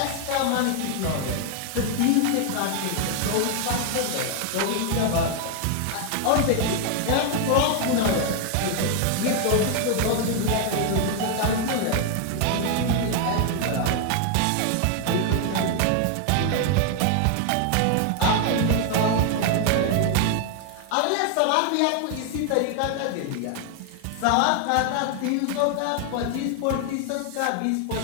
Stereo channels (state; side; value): different; both; correlation 0.01